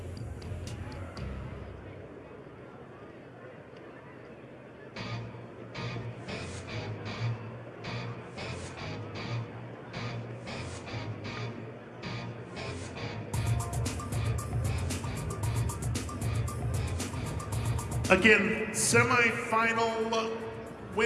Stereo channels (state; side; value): identical; both; correlation 1.00